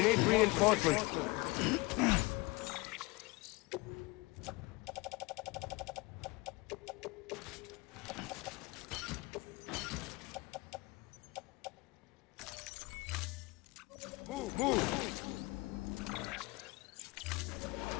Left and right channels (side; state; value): right; quieter; 24.3 dB